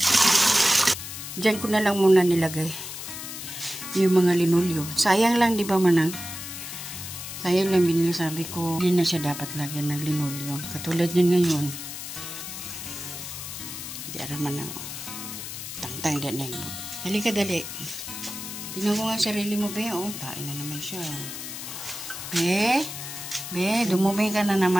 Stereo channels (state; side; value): noise; left; hiss, 8 dB below the sound